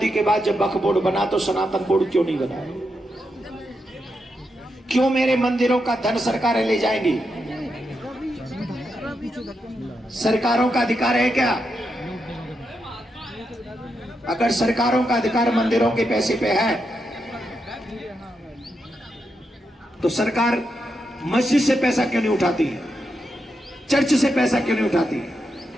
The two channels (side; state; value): both; normal; correlation 0.84